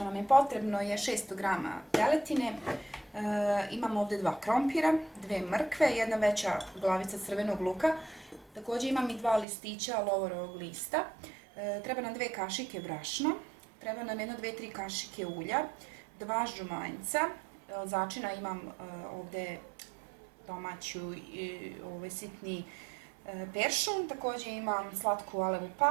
nam je potrebno je 600 g teletine, imamo ovdje 2 krompira, 2 mrkve, jedna veća glavica crvenog luka, također imam i 2 listića lovorovog lista, treba nam 2 kašike brašna, treba nam 1-2-3 kašike ulja, 2 žumanjca, začina imam ovdje domaću sitni peršun, također imam slatku alevu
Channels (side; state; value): left; drops out; at 9.5 s